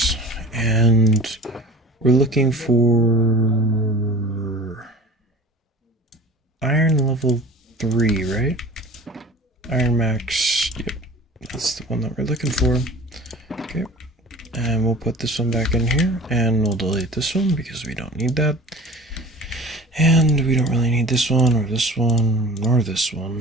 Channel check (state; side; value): normal; both; correlation 0.41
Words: and we're looking for iron level 3, right? Iron max, yep, that's the one that we're looking for. Okay, And we'll put this one back in here, and we'll delete this one because we don't need that. And we don't really need this one, or this one, or this